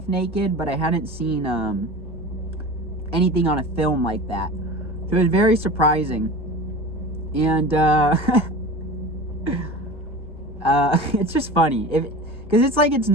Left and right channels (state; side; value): normal; both; correlation 0.34